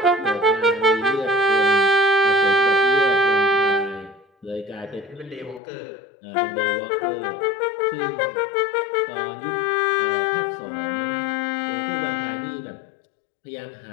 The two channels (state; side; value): drops out; right; at 5.6 s